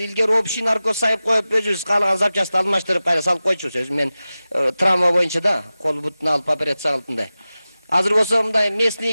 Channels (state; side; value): inverted; both; correlation -0.95